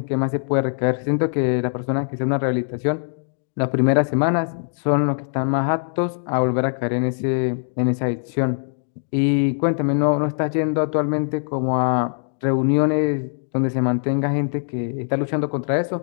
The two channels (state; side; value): silent; right; digital silence